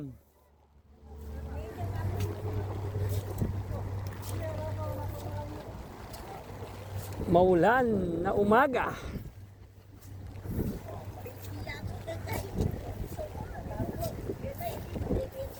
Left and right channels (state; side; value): identical; both; correlation 1.00